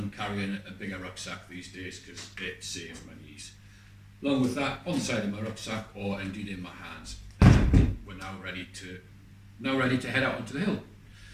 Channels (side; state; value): both; identical; correlation 1.00